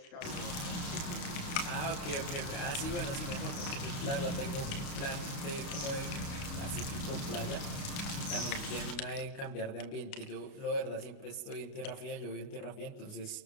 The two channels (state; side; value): late; right; 29 ms